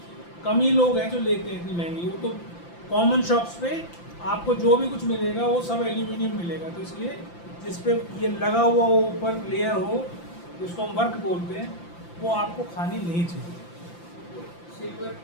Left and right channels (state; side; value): late; right; 5.8 ms